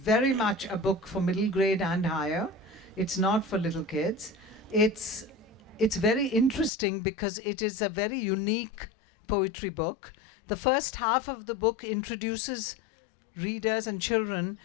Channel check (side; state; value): right; drops out; at 6.7 s